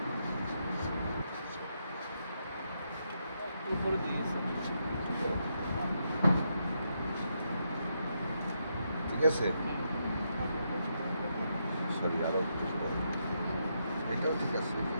ঠিক আছে। সরি, আরো এটাও ঠিক আছে।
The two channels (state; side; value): inverted; both; correlation -0.81